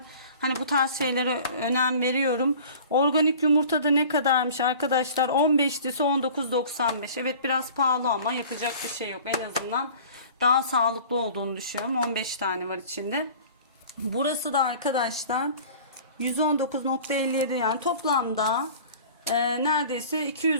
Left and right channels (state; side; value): inverted; both; correlation -0.44